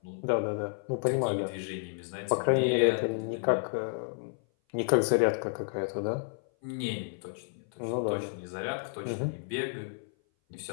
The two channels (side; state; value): right; silent; 56 dB below the other